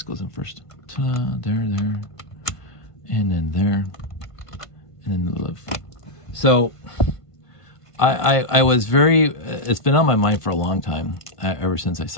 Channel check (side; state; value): right; late; 1.5 ms